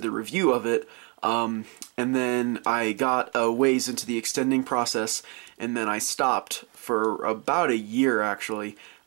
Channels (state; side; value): quieter; left; 30.7 dB